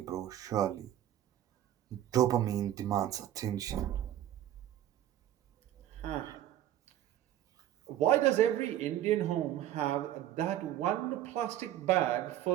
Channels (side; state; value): left; quieter; 12.4 dB